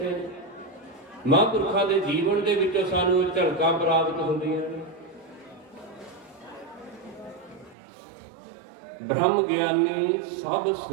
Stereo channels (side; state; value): left; drops out; at 7.8 s